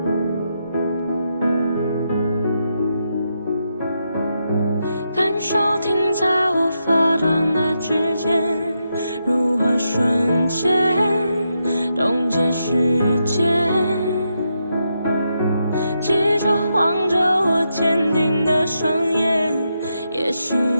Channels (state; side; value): inverted; both; correlation -0.83